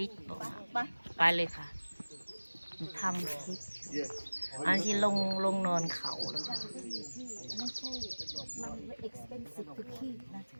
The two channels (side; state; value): both; inverted; correlation -1.00